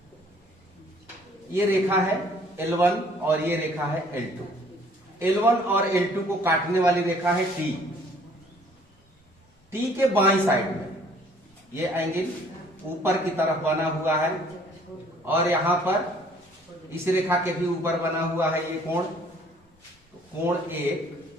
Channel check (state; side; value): normal; both; correlation 0.58